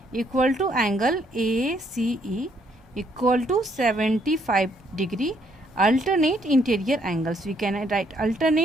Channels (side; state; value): both; normal; correlation 0.69